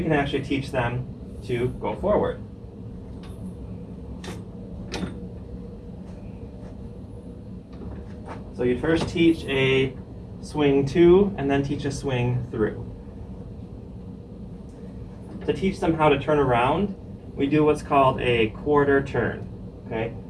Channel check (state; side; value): identical; both; correlation 1.00